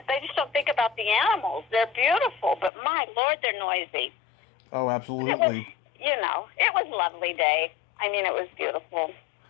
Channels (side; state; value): right; drops out; at 2.7 s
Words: don't think about the animals. They're beautiful, but my Lord, they're noisy. Oh, absolutely. It was a lovely day. I mean, it was beautiful.